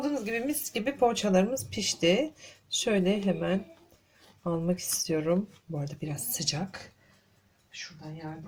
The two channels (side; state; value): both; identical; correlation 1.00